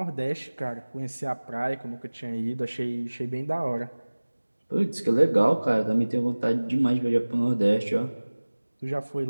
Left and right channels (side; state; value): both; inverted; correlation -1.00